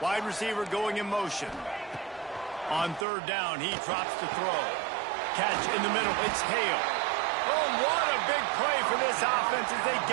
Wide receiver going in motion. On third down, he drops to throw. Catch in the middle, it's Hale. Oh, what a big play for this offense as they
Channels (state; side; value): drops out; left; at 3.1 s